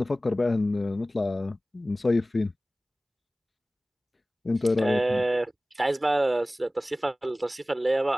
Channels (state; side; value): normal; both; correlation 0.97